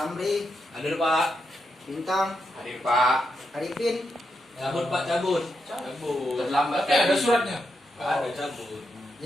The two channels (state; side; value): normal; both; correlation 0.83